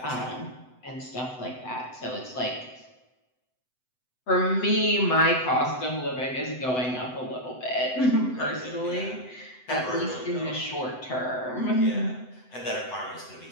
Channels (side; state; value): right; late; 7.9 ms